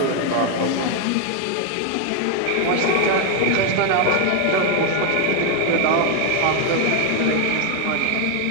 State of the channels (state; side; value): different; both; correlation 0.01